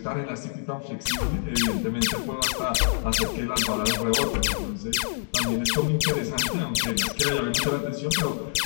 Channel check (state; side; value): silent; right; digital silence